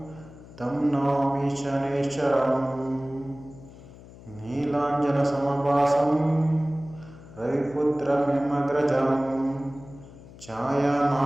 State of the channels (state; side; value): noise; left; hum, 19 dB below the sound